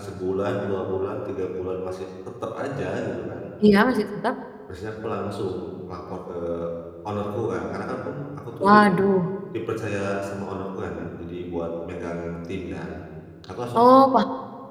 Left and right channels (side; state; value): both; identical; correlation 1.00